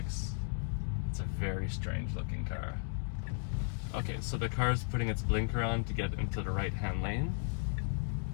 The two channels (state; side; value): silent; right; 54 dB below the other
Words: It's a very strange looking car. Okay, so the car is putting its blinker on to get into the right-hand lane.